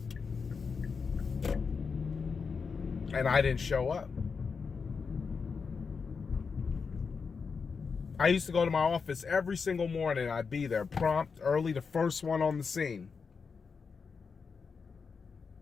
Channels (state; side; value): quieter; right; 5.4 dB